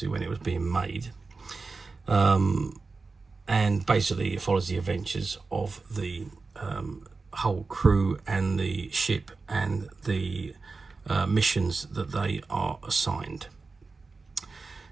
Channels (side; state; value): left; quieter; 4.1 dB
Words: when it was being made. And basically it follows the adventures of the whole crew and the ship and the missions that they are assigned.